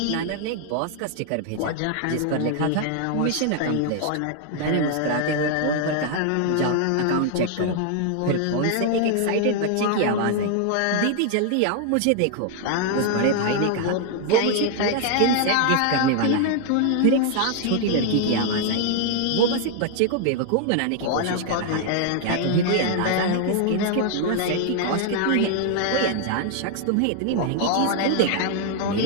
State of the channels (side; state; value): both; different; correlation 0.00